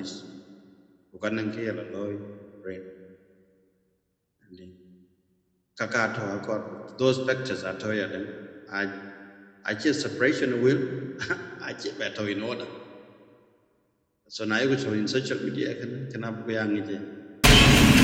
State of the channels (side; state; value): both; identical; correlation 1.00